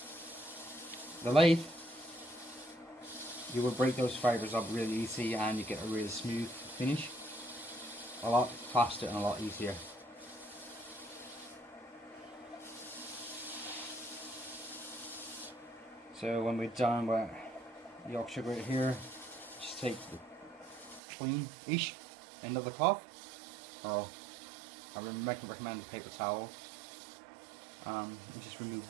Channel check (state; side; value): drops out; left; at 21.0 s